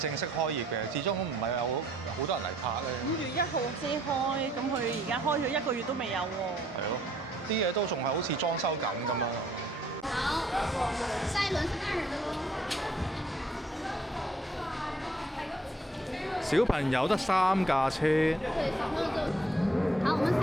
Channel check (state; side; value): normal; both; correlation 0.65